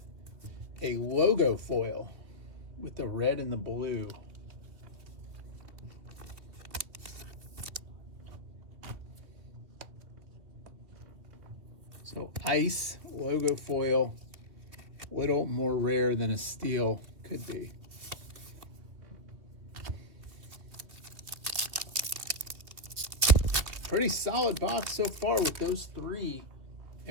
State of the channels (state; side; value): late; left; 2.8 ms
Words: a logo foil with the red and the blue. So ice logo foil, a little more rare than a steel could be. Pretty solid box so far with those three,